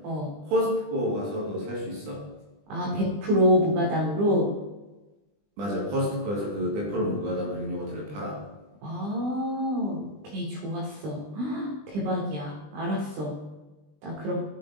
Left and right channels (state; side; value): late; left; 20 ms